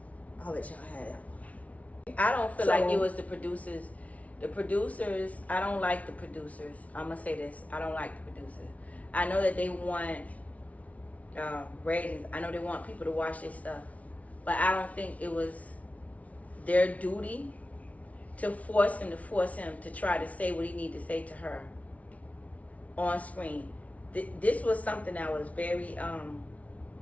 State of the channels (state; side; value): late; right; 0.068 ms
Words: I'll let y'all have it. I don't feel So- like it was the producers. The producers, I don't like the producers. I'm gonna say this. I don't like the producers. I know that they want ratings. I know they want people to watch their stuff. But I don't think it was their duty to force him to try to say what he needed to say to her on screen. This was something that was very